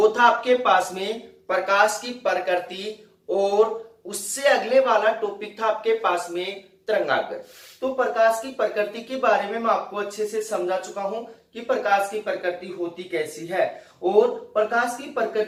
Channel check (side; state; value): both; identical; correlation 1.00